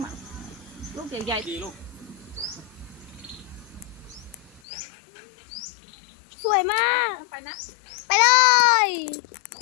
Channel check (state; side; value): drops out; right; at 4.6 s